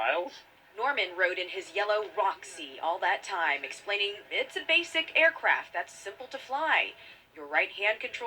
Norman rode in his yellow Roxy all that time, explaining it's a basic aircraft that's simple to fly. Your right hand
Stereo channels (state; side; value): identical; both; correlation 1.00